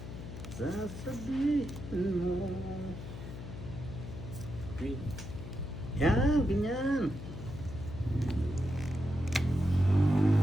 Sasabihin mo. Green. Yan, ganyan.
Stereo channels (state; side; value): noise; left; hum, 10 dB below the sound